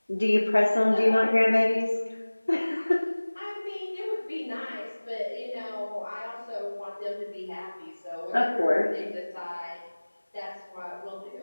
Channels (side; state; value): both; inverted; correlation -1.00